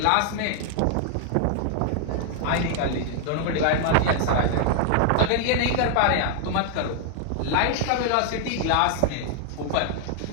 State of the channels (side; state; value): both; different; correlation 0.00